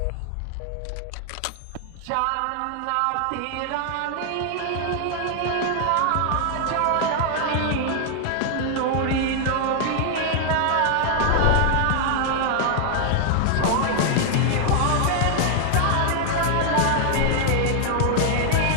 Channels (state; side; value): different; both; correlation 0.00